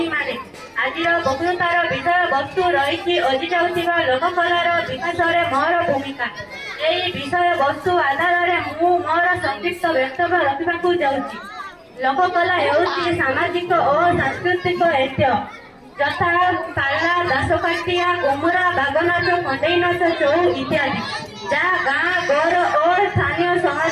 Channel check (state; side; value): identical; both; correlation 1.00